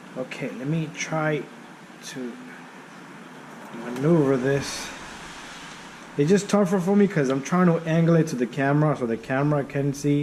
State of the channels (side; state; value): both; identical; correlation 1.00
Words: Okay, let me try to maneuver this. It's just tougher for me because I'm trying to angle it to the camera so the camera can